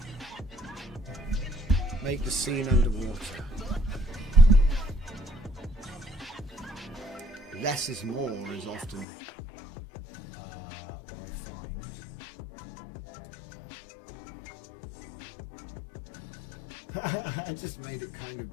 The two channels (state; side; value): drops out; right; at 9.1 s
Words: Make the scene underwater. Less is more is often what I find. I just made it kind of